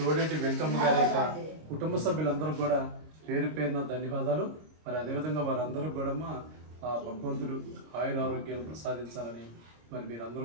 వెంకమ్మ గారి యొక్క కుటుంబ సభ్యులందరూ కూడా పేరు పేరున ధన్యవాదాలు. మరి అదేవిధంగా వారందరూ కూడా ఆ భగవంతుడు ఆయుర ఆరోగ్యాలు ప్రసాదించాలని మరి మీరందరూ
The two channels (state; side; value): late; left; 26 ms